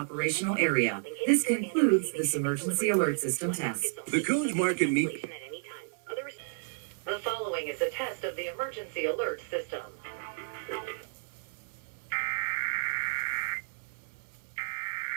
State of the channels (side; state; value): left; silent; 57 dB below the other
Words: Area. This concludes this emergency alert system test. The Coons Market Meat. The following is a test of the emergency alert system.